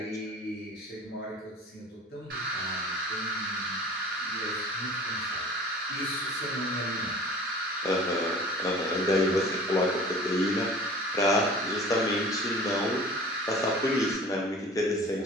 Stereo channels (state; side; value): normal; both; correlation 0.44